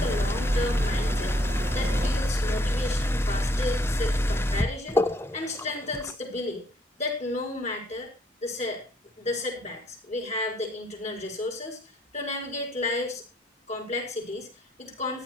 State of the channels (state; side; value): normal; both; correlation 0.67